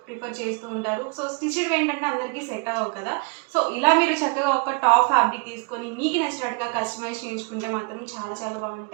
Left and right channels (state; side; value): quieter; left; 32.4 dB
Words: ప్రిఫర్ చేస్తూ ఉంటారు. సో స్టిచ్డ్ ఏంటంటే అందరికీ సెట్ అవ్వవు కదా. సో ఇలా మీరు చక్కగా ఒక టాప్ ఫ్యాబ్రిక్ తీసుకొని మీకు నచ్చినట్టుగా కస్టమైజ్ చేయించుకుంటే మాత్రం చాలా చాలా